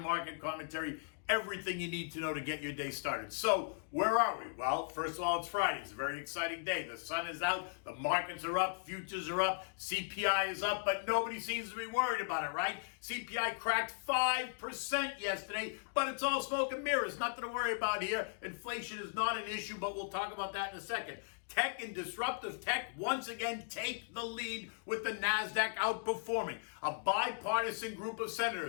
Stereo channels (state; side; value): silent; right; digital silence